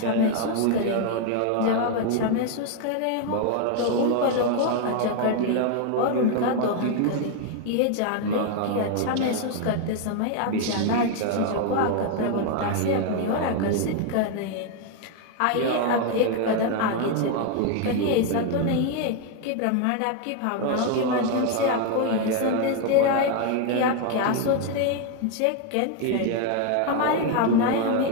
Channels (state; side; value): different; both; correlation 0.01